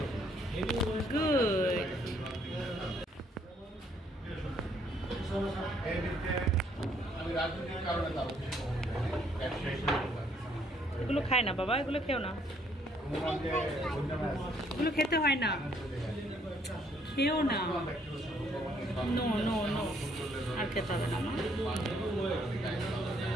গুড। এগুলো খায় না বাবা, এগুলো খেও না, এগুলো খেতে হয় না, খেও না। নো নো নো, আর খেতে হবে না মা।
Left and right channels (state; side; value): normal; both; correlation 0.67